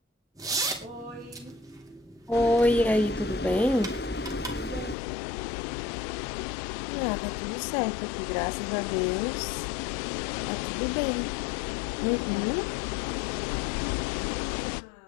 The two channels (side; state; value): right; drops out; at 5.0 s